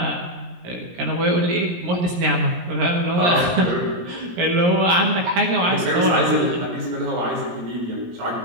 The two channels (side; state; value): left; late; 17 ms